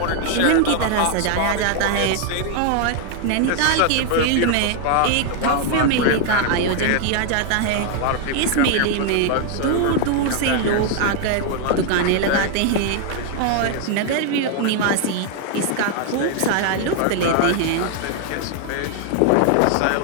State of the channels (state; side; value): different; both; correlation 0.00